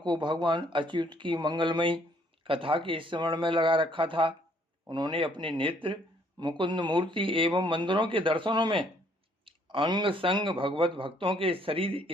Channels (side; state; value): both; normal; correlation 0.64